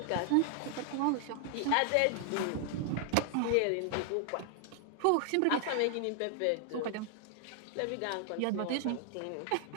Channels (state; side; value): different; both; correlation 0.00